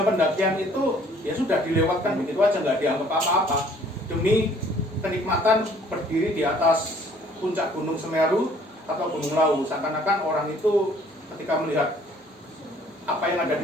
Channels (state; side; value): normal; both; correlation 0.58